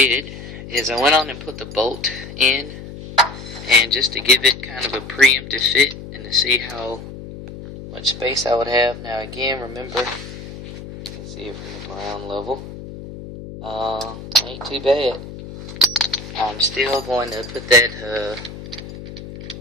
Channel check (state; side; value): noise; left; hum, 12 dB below the sound